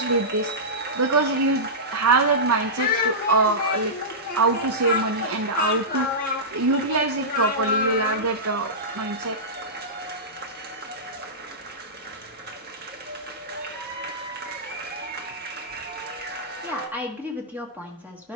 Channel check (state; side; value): normal; both; correlation -0.15